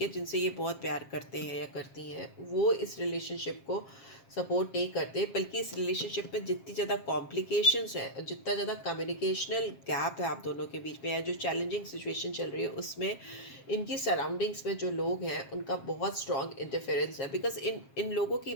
है, जिनसे ये बहुत प्यार करते हैं या करती हैं, वो इस रिलेशनशिप को सपोर्ट नहीं करते, बल्कि इस रिलेशनशिप में जितनी ज़्यादा कॉम्प्लिकेशंस है, जितना ज़्यादा कम्युनिकेशनल गैप है आप दोनों के बीच में, या जो चैलेंजिंग सिचुएशन चल रही है उसमें इनकी सराउंडिंग्स में जो लोग हैं उनका बहुत स्ट्रॉन्ग इंटरफेरेंस है, बिकॉज इन लोगों की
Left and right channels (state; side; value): late; right; 7.4 ms